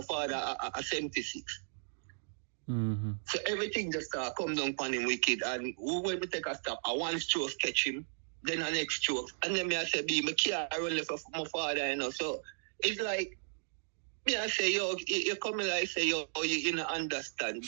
father a 76. So everything just come down upon him wicked. And when we take a stop, I one stroke catch him, then the next stroke. And then I say, my can't run left for my father, you know. So it's like, me I say, yo, you come in like say, yo, you don't understand.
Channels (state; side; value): silent; left; digital silence